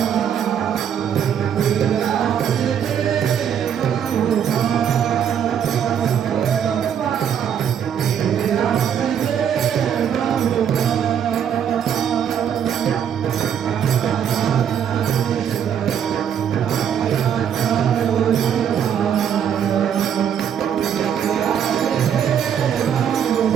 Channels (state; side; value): quieter; left; 8.6 dB